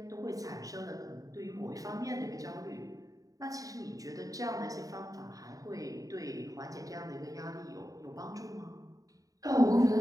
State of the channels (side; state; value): left; late; 0.17 ms